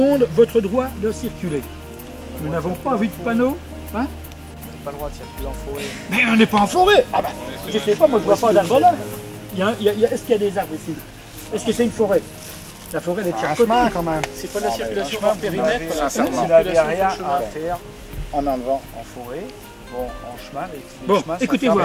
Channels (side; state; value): both; identical; correlation 1.00